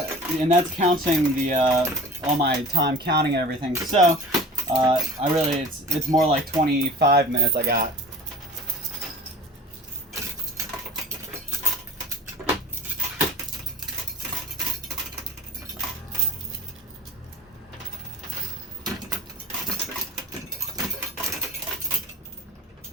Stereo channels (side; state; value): both; normal; correlation 0.41